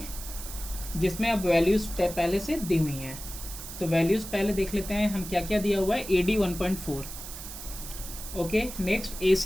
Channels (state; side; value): noise; right; hiss, 11 dB below the sound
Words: जिसमें अब वैल्यूज़ पहले से दी हुई हैं। तो वैल्यूज़ पहले देख लेते हैं हम क्या क्या दिया हुआ है। A D 1.4, okay. नेक्स्ट ए